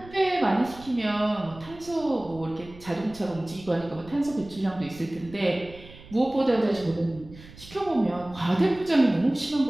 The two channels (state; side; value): noise; right; rumble, 19 dB below the sound